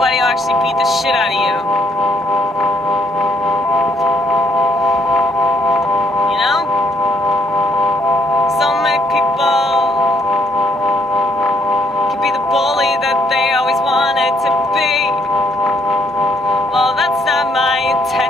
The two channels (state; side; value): normal; both; correlation 0.69